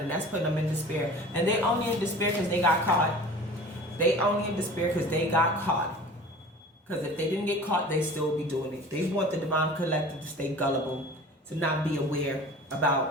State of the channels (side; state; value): both; normal; correlation 0.41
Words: and that's putting them in despair. And they only in despair because they got caught. They only in despair because they got caught. Because if they didn't get caught, they still be doing it. They want the divine collective to stay gullible, to not be aware